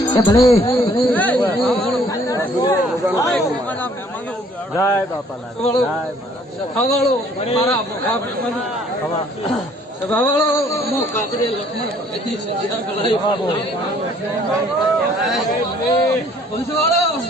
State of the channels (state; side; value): normal; both; correlation 0.59